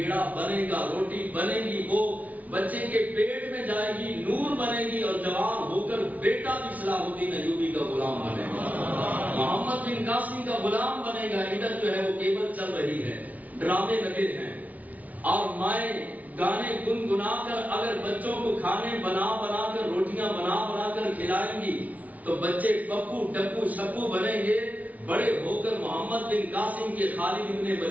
بنے گا، روٹی بنے گی، وہ بچے کے پیٹ میں جائے گی، نور بنے گی، اور جوان ہو کر بیٹا بھی صلاح الدین ایوبی کا غلام بنے گا، محمد بن قاسم کا غلام بنے گا. ادھر جو ہے وہ کیبل چل رہی ہے، ڈرامے لگے ہیں، اور مائیں گانے گنگنا کر اگر بچوں کو کھانے بنا بنا کر، روٹیاں بنا بنا کر کھلائیں گی تو بچے پپو ڈپو شپو بنیں گے. بڑے ہو کر محمد بن قاسم کے، خالد بن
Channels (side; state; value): left; late; 0.072 ms